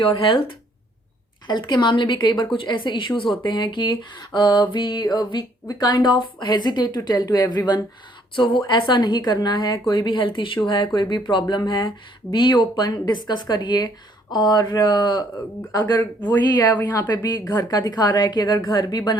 health के मामले भी कई बार कुछ ऐसे इश्यूज होते हैं कि we kind of hesitate to tell to everyone. So वो ऐसा नहीं करना है। कोई भी हेल्थ इशू है, कोई भी प्रॉब्लम है, बी ओपन, डिस्कस करिए। और अगर वही है, यहाँ पे भी घर का दिखा रहा है कि अगर घर भी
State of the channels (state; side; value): normal; both; correlation 0.65